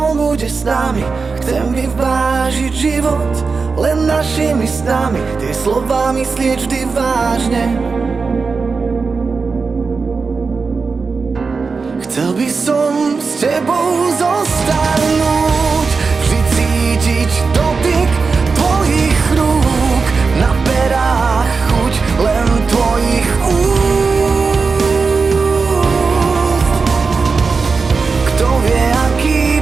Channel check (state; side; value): quieter; left; 4.7 dB